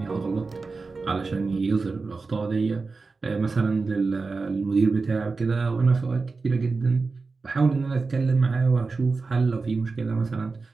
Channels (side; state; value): left; quieter; 4.1 dB